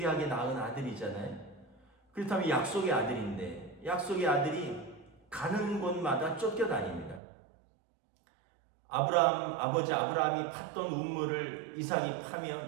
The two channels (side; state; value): left; drops out; at 7.2 s